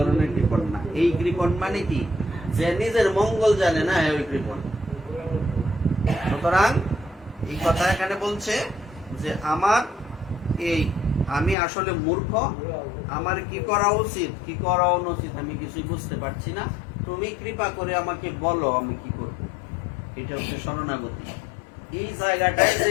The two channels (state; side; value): drops out; right; at 11.6 s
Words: কৃপণ না। এই কৃপণ মানে কি, যে নিজের মঙ্গল জানে না, ওই কৃপণ। সুতরাং এই কথা এখানে বলছে যে আমি আসলে মূর্খ, আমার কি করা উচিত কি করা অনুচিত আমি কিছুই বুঝতে পারছি না, তুমি কৃপা করে আমাকে বলো আমি কি করব। এটা হচ্ছে শরণাগতি। এই জায়গাটায়